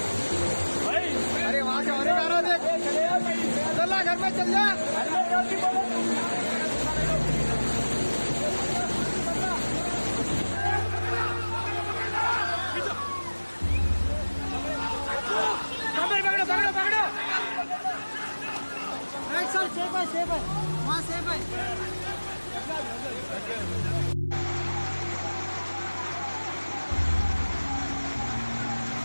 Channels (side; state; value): both; inverted; correlation -1.00